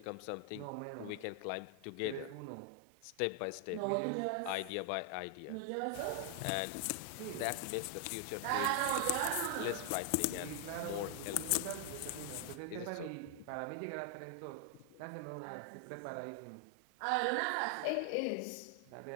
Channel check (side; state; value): both; different; correlation 0.00